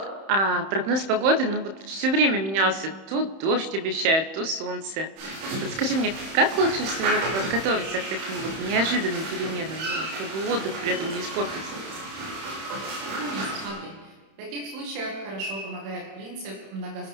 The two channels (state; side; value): late; left; 31 ms